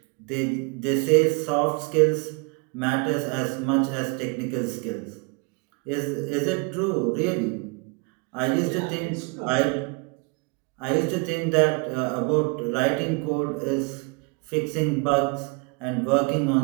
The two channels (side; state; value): left; quieter; 31.2 dB